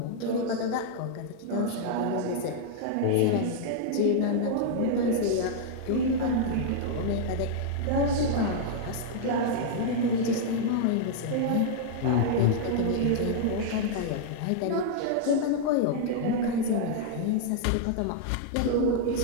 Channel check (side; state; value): both; different; correlation -0.01